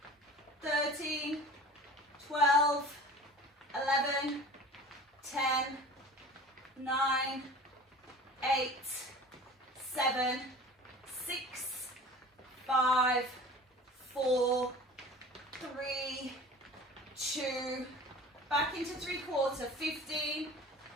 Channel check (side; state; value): both; normal; correlation 0.41